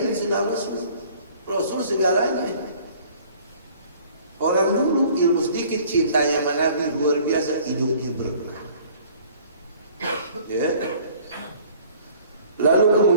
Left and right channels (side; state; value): both; inverted; correlation -0.53